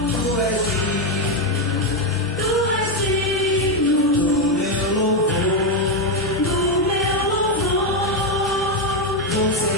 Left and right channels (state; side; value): normal; both; correlation 0.06